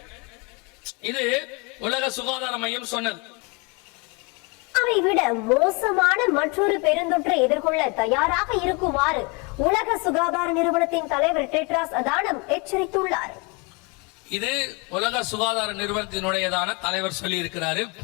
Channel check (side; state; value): right; quieter; 30.5 dB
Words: இது உலக சுகாதார மையம் சொன்னது. அதை விட மோசமான மற்றொரு பெருந்தொற்றை எதிர்கொள்ள தயாராக இருக்குமாறு உலக சுகாதார நிறுவனத்தின் தலைவர் டெட்ராஸ் அதானம் எச்சரித்துள்ளார். இது உலக சுகாதார நிறுவனத்தினுடையதான தலைவர் சொல்லி இருக்கிறாரு.